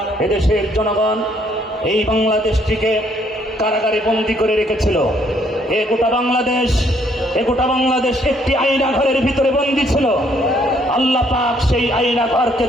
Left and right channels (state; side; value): normal; both; correlation 0.67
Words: এদেশের জনগণ এই বাংলাদেশটিকে কারাগারে বন্দী করে রেখেছিল। এ গোটা বাংলাদেশ একটি আয়না ঘরের ভিতরে বন্দী ছিল। আল্লাহ পাক সেই আয়না ঘরকে